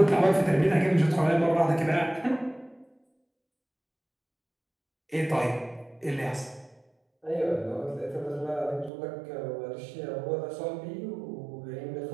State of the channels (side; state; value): left; drops out; at 8.9 s